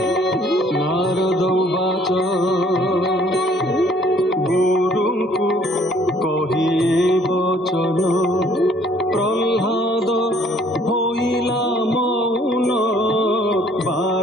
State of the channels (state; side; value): normal; both; correlation 0.60